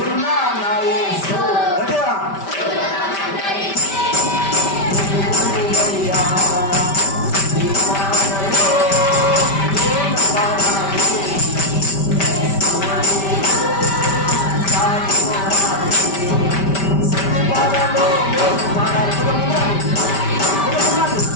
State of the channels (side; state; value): right; late; 5.1 ms